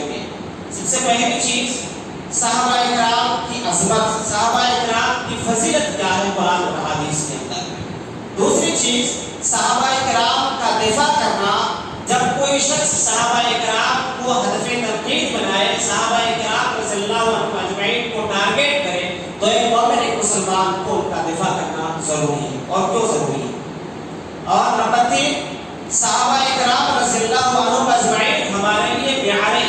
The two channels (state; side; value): identical; both; correlation 1.00